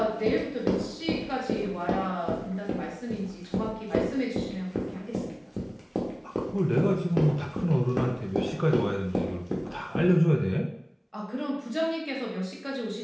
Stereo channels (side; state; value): both; identical; correlation 1.00